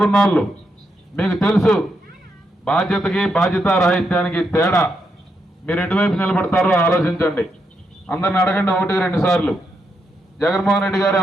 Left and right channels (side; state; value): both; normal; correlation 0.81